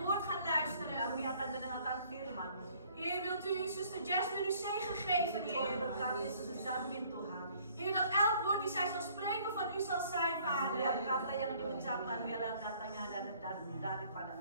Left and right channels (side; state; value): both; inverted; correlation -0.59